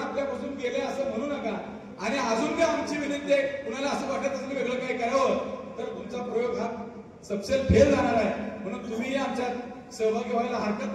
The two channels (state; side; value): identical; both; correlation 1.00